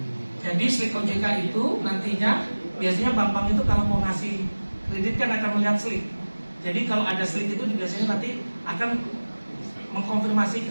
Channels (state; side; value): inverted; both; correlation -1.00